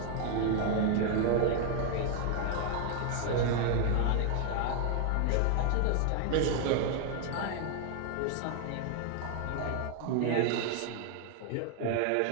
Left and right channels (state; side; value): different; both; correlation 0.00